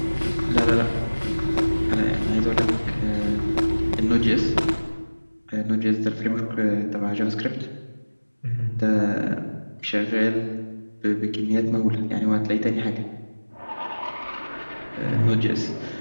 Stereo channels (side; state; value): both; inverted; correlation -1.00